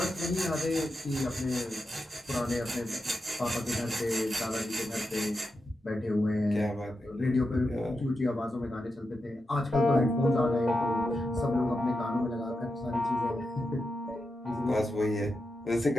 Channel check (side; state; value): both; normal; correlation 0.88